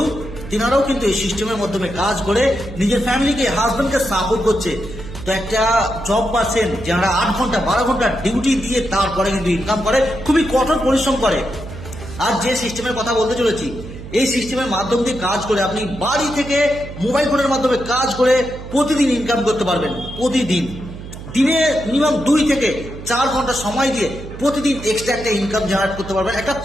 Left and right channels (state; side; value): noise; right; hum, 12 dB below the sound